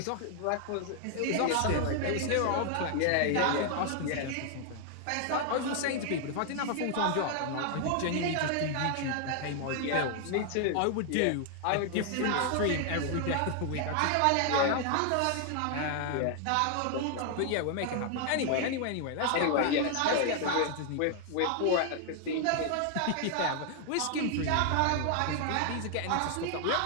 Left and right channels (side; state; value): both; different; correlation 0.00